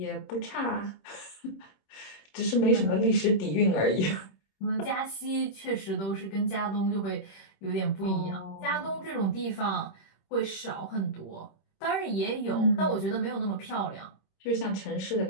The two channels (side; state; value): right; late; 26 ms